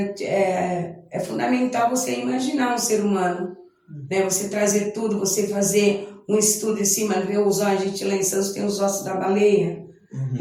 fundamental você imaginar um ser humano, né? Você trazer tudo, você fazer um estudo em cima, ver os ossos, a gente lá em Santos tem os ossos da baleia,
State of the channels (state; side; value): identical; both; correlation 1.00